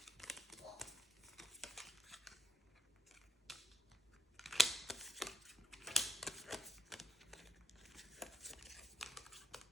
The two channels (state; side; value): normal; both; correlation 0.68